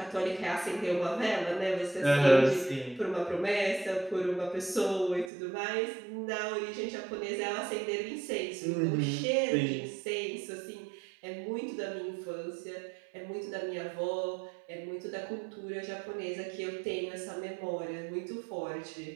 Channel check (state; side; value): drops out; left; at 5.3 s